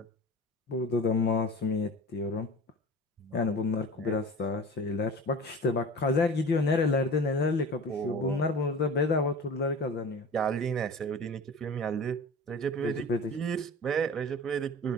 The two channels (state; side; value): normal; both; correlation 0.37